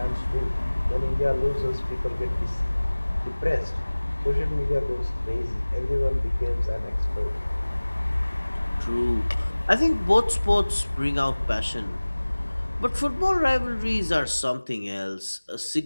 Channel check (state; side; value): inverted; both; correlation -1.00